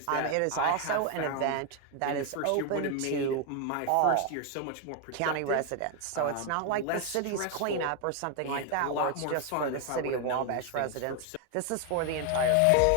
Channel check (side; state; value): both; different; correlation 0.01